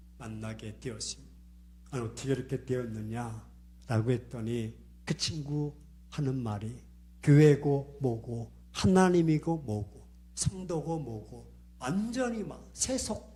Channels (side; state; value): both; identical; correlation 1.00